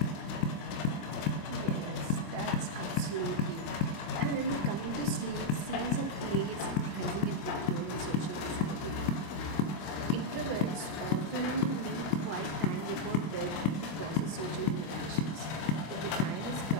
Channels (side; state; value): right; late; 25 ms